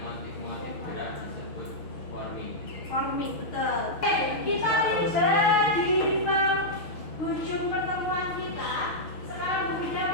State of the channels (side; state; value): right; late; 6.4 ms